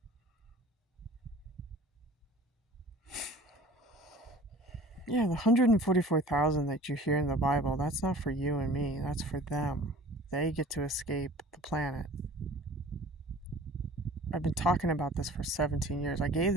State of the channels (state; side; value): normal; both; correlation 0.44